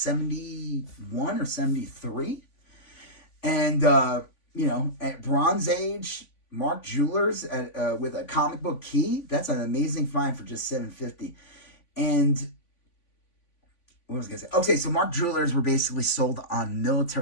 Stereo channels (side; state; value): right; late; 3.5 ms